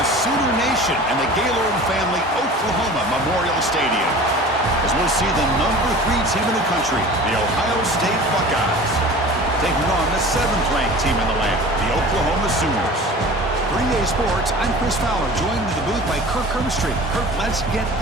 the Sooner Nation and the Gaylord Family Oklahoma Memorial Stadium, as we'll see the #3 team in the country, the Ohio State Buckeyes, taking on the 7th-ranked team in the land, the Oklahoma Sooners. 3A Sports, I'm Chris Fowler, joined in the booth by Kirk Herbstreit. Kirk, let's get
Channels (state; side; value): normal; both; correlation 0.40